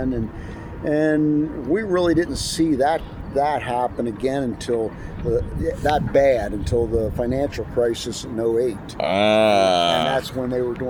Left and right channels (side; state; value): both; identical; correlation 1.00